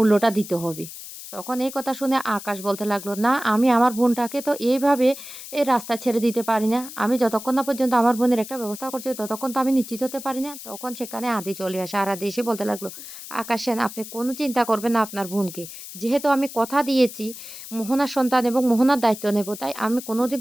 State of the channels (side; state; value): left; noise; hiss, 13 dB below the sound